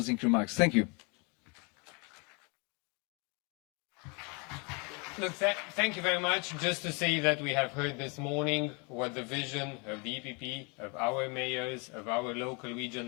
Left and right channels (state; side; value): quieter; right; 31.8 dB